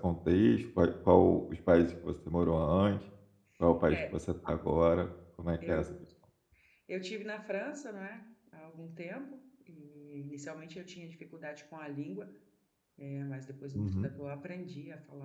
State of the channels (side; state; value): both; identical; correlation 1.00